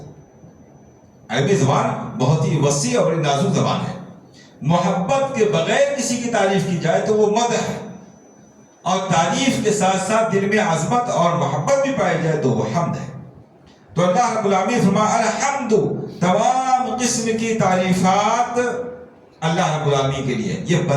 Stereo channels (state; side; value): identical; both; correlation 1.00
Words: عربی زبان بہت ہی وسیع اور بڑی نازک زبان ہے۔ محبت کے بغیر کسی کی تعریف کی جائے تو وہ مدح ہے، اور تعریف کے ساتھ ساتھ دل میں عظمت اور محبت بھی پائی جائے تو وہ حمد ہے۔ تو اللہ رب العالمین فرمایا الحمد، تمام قسم کی تعریفات اللہ رب العالمین کے لیے۔ یہ